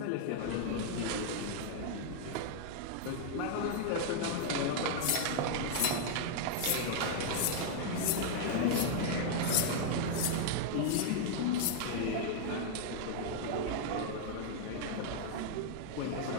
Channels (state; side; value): different; both; correlation -0.01